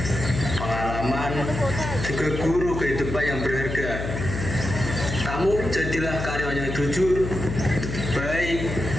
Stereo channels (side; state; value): left; noise; hum, 5 dB below the sound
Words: Pengalaman juga guru kehidupan yang berharga. Kamu jadilah karyawan yang jujur, baik,